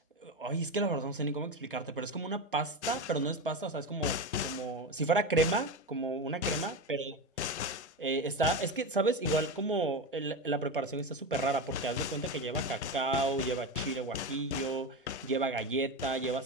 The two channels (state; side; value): normal; both; correlation 0.19